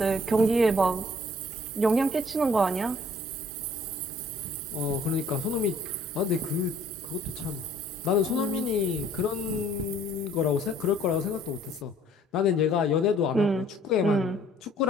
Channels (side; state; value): both; normal; correlation 0.57